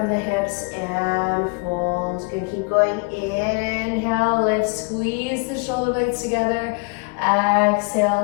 the hips and fold. Good, keep going. Inhale, lift, squeeze the shoulder blades together.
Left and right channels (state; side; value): quieter; right; 32.3 dB